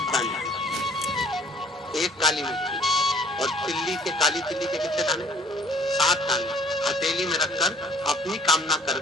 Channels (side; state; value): both; normal; correlation 0.56